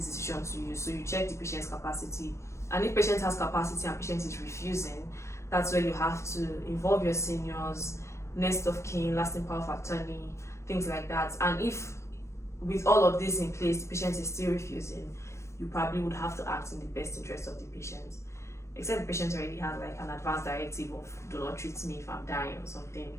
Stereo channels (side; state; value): right; late; 0.13 ms